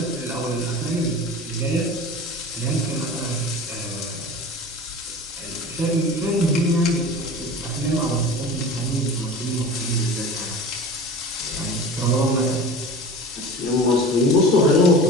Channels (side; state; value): both; normal; correlation 0.36